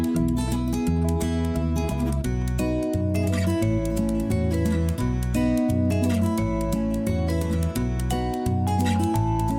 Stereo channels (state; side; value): identical; both; correlation 1.00